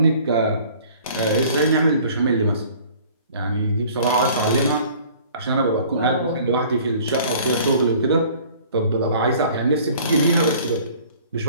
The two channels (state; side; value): inverted; both; correlation -0.51